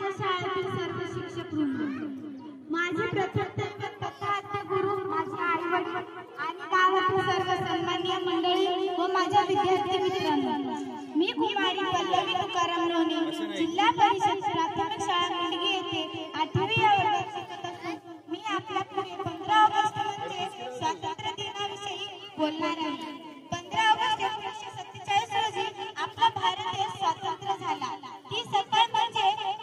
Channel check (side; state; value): both; identical; correlation 1.00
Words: शाळेतील सर्व शिक्षक वृंद, माझे प्रथम तथागत गुरु, माझे आई वडील आणि गावातील सर्व सन्माननीय मंडळी व माझ्या विद्यार्थी मित्रांनो, मी कुमारी पल्लवी तुकाराम लोणे, जिल्हा परिषद प्राथमिक शाळा मुंडगी येथे 8वी या वर्गात शिकत असून मी आपल्या पुढे 15 ऑगस्ट म्हणजे स्वातंत्र्य दिनाविषयी बोलणार आहे। 15 ऑगस्ट 1947 रोजी आपला भारत देश स्वतंत्र झाला। ती सकाळ म्हणजे